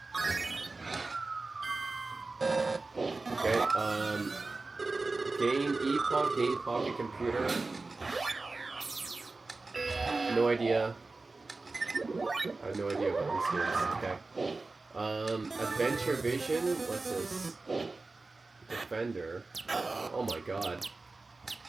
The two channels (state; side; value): quieter; left; 3.6 dB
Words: Okay, Game Epoch, Game Pocket Computer. No idea. I have no idea about these games. Okay. Adventure Vision. What's this? Defender. Oh my god.